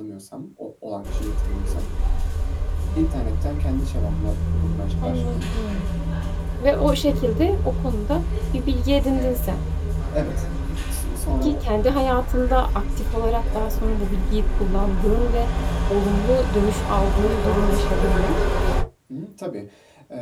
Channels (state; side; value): identical; both; correlation 1.00